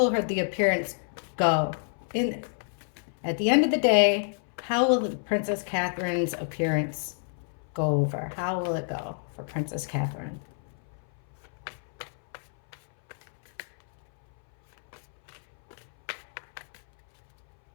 the appearance go? At the end of the day, how will Princess Catherine's appearance go over? How will it go for Princess Catherine?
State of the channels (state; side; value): silent; right; 59 dB below the other